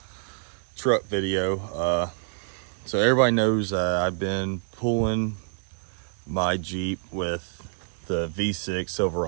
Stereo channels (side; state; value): left; silent; digital silence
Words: truck video. So everybody knows I've been pulling my Jeep with the V6